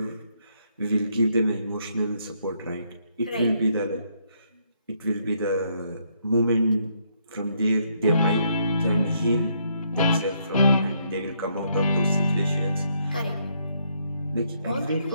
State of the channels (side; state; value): both; inverted; correlation -0.73